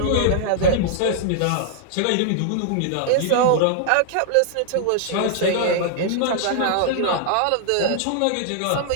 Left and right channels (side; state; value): both; different; correlation -0.01